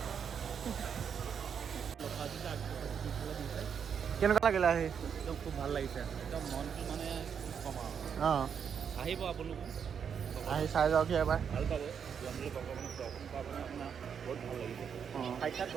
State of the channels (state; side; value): quieter; left; 7.3 dB